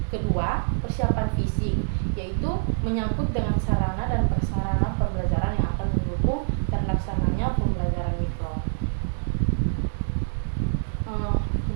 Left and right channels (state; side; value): silent; left; digital silence